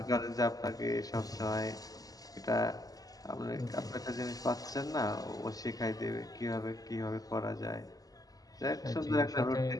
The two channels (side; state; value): right; late; 0.18 ms